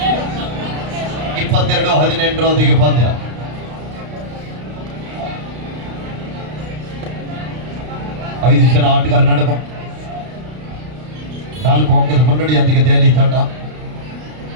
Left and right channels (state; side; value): late; left; 32 ms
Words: ಇಪ್ಪತ್ತೆರಡು 18 ಪಂದ್ಯ. ಐದು ಜನ ಆಟಗಾರ ನಡುವೆ 4 ಅಂಕದ ಮುನ್ನಡೆಯೊಂದಿಗೆ ದೆಹಲಿ ತಂಡ.